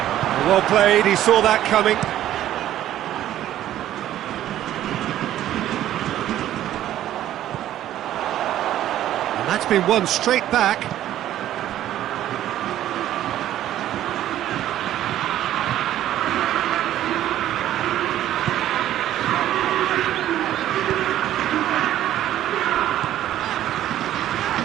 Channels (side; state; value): left; quieter; 12.6 dB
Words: Well played, he saw that coming. And that's been won straight back.